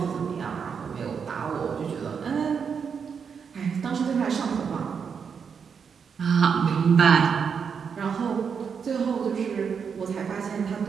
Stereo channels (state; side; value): quieter; left; 6.5 dB